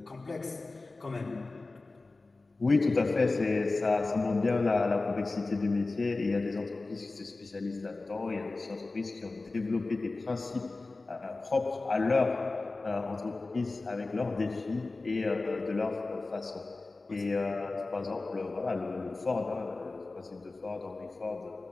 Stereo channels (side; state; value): right; quieter; 3.4 dB